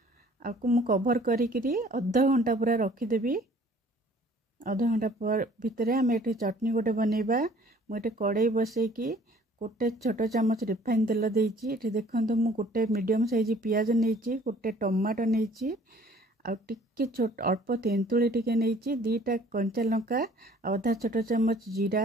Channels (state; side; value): normal; both; correlation 0.55